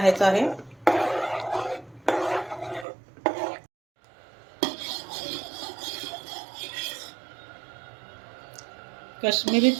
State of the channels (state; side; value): drops out; left; at 2.9 s